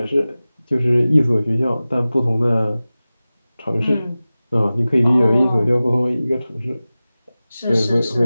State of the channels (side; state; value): both; inverted; correlation -0.97